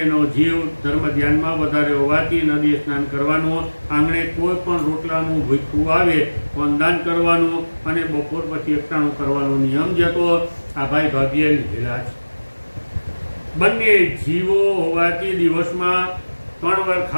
જીવ ધર્મ ધ્યાનમાં વધારે હોવાથી નદીએ સ્નાન કરવાનું, આંગણે કોઈ પણ રોટલાનું ભૂખું આવે વંદાન કરવાનું અને બપોર પછી એકટાણું કરવાનો નિયમ જે હતો આ ભાઈ ભાભીએ લીધેલા છે. બંને જીવો હોવાથી દિવસમાં 3 વાર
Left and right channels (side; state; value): both; inverted; correlation -1.00